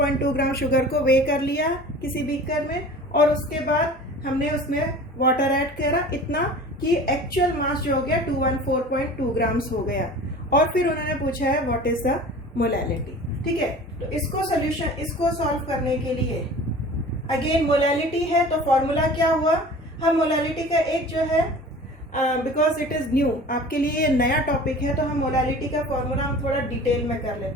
ग्राम शुगर को वे कर लिया किसी बीकर में और उसके बाद हमने उसमें वाटर ऐड करा इतना कि एक्चुअल मास जो हो गया 214.2 ग्राम्स हो गया। और फिर उन्होंने पूछा है व्हाट इज द मोलैलिटी, ठीक है। तो इसको सॉल्व करने के लिए अगेन मोलैलिटी है तो फॉर्मूला क्या हुआ, हम मोलैलिटी का एक जो है बिकॉज इट इज न्यू, आपके लिए ये नया टॉपिक है, तो हम मोलैलिटी का फॉर्मूला हम थोड़ा डिटेल में कर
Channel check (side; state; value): both; normal; correlation 0.41